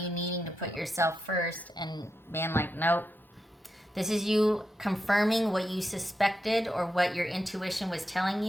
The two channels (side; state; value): both; normal; correlation 0.86